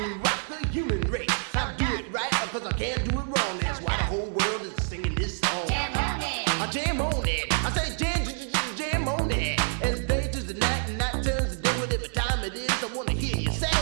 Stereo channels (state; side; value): silent; left; digital silence